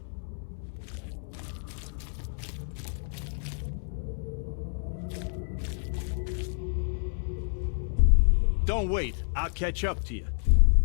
Don't wait. I'll catch up to you.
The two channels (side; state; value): right; silent; 58 dB below the other